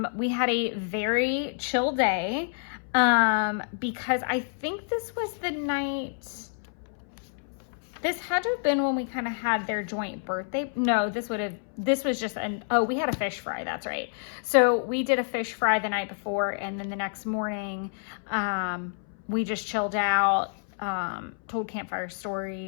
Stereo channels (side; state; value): right; silent; 59 dB below the other